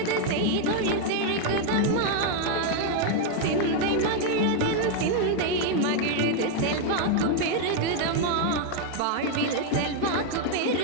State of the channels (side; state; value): both; different; correlation 0.00